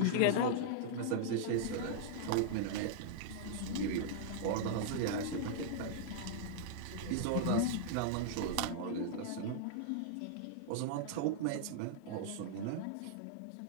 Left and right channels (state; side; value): different; both; correlation -0.01